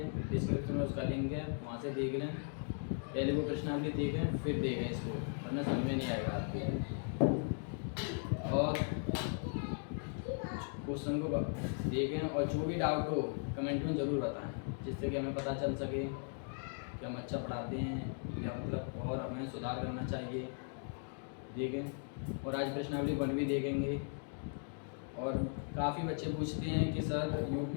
डिस्क्रिप्शन में उसका लिंक है, वहाँ से देख लें। पहले वो प्रश्नावली देखें फिर देखें इसको, वरना समझ में नहीं आएगा आपको। और क्वेश्चन को देखें और जो भी डाउट हो कमेंट में ज़रूर बताएं, जिससे कि हमें पता चल सके कि हम अच्छा पढ़ाते हैं या मतलब और हमें सुधार करना चाहिए। देखें। और आज प्रश्नावली 1B देखेंगे। और काफ़ी बच्चे पूछते हैं कि सर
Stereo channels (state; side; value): silent; right; 53 dB below the other